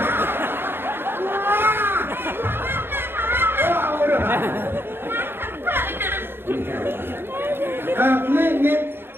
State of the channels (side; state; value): left; late; 0.11 ms